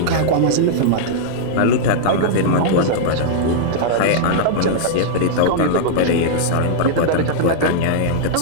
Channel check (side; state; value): both; different; correlation -0.02